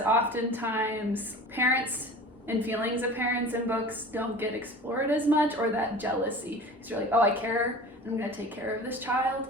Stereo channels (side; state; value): both; normal; correlation 0.39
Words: oftentimes parents and feelings of parents in books don't get explored as much, or that jealousy. Because you're like, oh, I care, and I'm going to take care of this child.